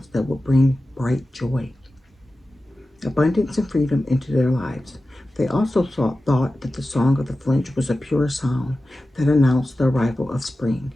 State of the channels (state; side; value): normal; both; correlation 0.94